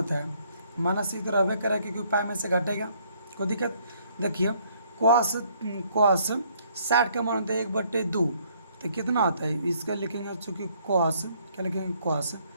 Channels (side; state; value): both; inverted; correlation -0.66